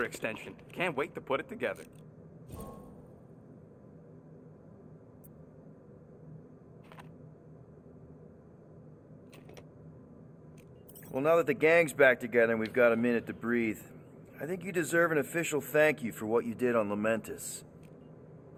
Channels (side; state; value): both; identical; correlation 1.00